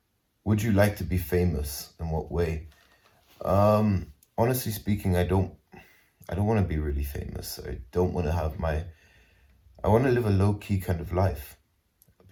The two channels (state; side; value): identical; both; correlation 1.00